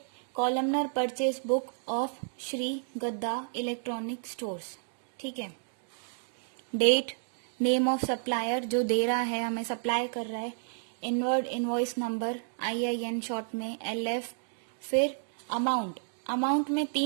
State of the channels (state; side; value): silent; left; digital silence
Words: columnar purchase book of Shri गद्दा इलेक्ट्रॉनिक स्टोर्स. ठीक है. डेट, नेम ऑफ सप्लायर जो दे रहा है, हमें सप्लाई कर रहा है, inward invoice number IIN short में LF. फिर अमाउंट, अमाउंट में